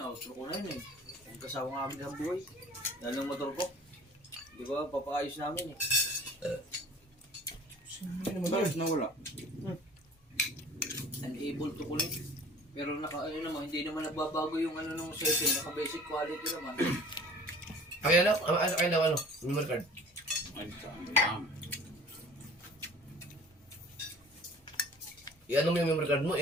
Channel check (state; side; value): normal; both; correlation 0.47